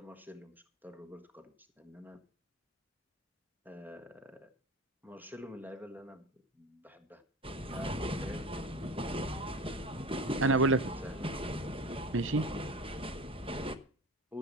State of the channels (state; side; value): normal; both; correlation 0.32